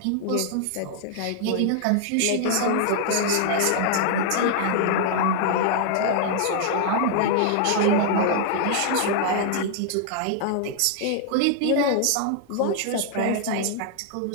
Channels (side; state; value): both; different; correlation 0.00